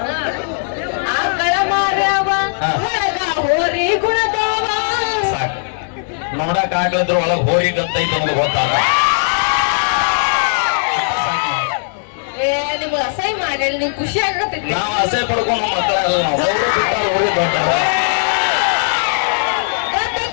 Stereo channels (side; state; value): right; silent; digital silence